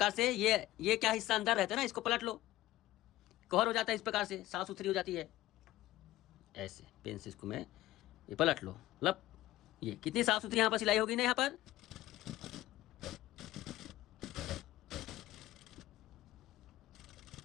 से ये क्या हिस्सा अंदर रहता है ना, इसको पलट लो, कवर हो जाता है, इस प्रकार से साफ सुथरी हो जाती है। ऐसे पेन से इसको मैं ये पलट लो, मतलब ये कितनी साफ सुथरी यहाँ पर सिलाई होगी ना यहाँ पर।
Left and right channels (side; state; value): right; quieter; 15.9 dB